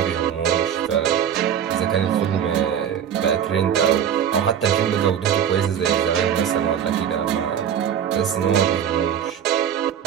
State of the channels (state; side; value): quieter; left; 8.9 dB